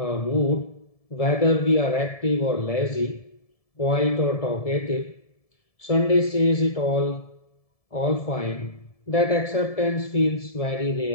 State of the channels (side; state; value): right; late; 1.7 ms